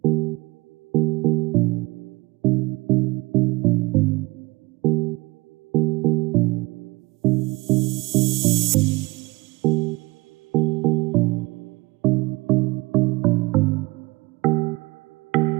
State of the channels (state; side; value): quieter; left; 23.2 dB